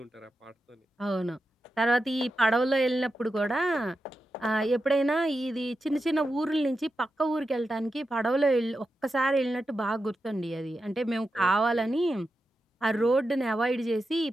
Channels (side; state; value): both; normal; correlation 0.89